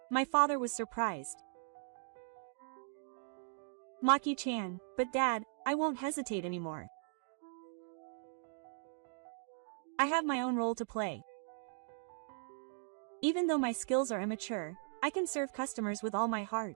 My father was surprised. Maki-chan, but Dad, I won't hesitate anymore. I have my own role to play. Even though my skills are immature, I can serve customers with all my heart.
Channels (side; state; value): left; silent; digital silence